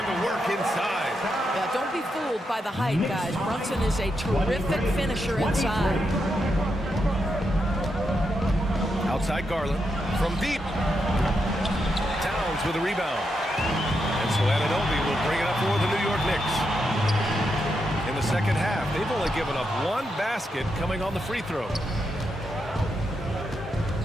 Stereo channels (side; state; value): both; normal; correlation 0.84